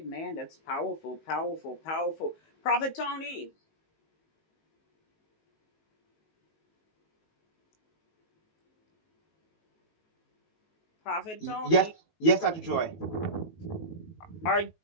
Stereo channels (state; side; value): late; right; 19 ms